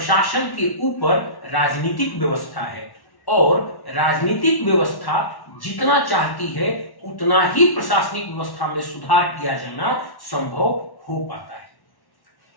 के ऊपर राजनीतिक व्यवस्था है और राजनीतिक व्यवस्था जितना चाहती है उतना ही प्रशासनिक व्यवस्था में सुधार किया जाना संभव हो पाता है।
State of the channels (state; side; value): late; right; 1.1 ms